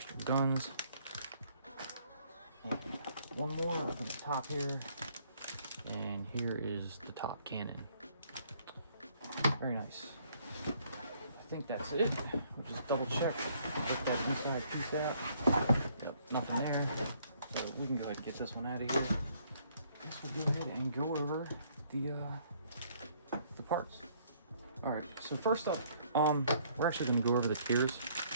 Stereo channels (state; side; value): inverted; both; correlation -0.65